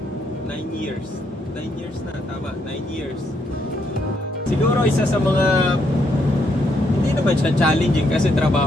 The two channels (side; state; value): both; normal; correlation 0.75